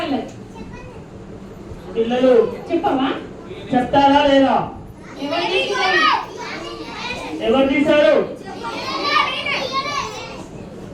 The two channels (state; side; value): identical; both; correlation 1.00